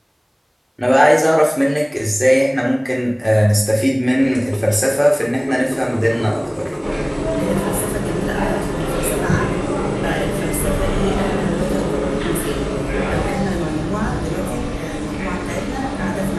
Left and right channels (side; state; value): both; identical; correlation 1.00